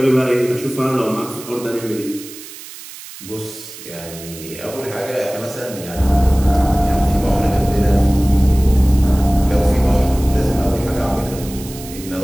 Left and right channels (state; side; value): noise; right; hiss, 15 dB below the sound